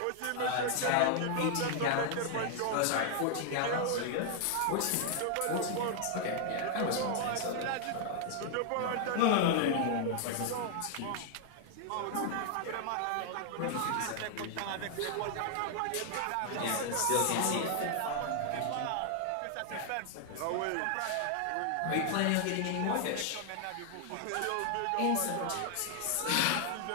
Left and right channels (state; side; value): different; both; correlation 0.00